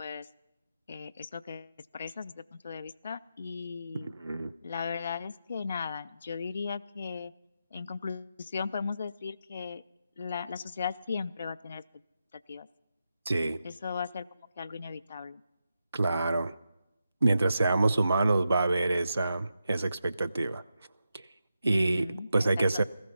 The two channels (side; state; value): both; inverted; correlation -0.87